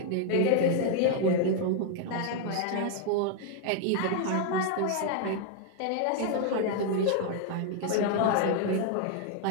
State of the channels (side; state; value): both; different; correlation 0.00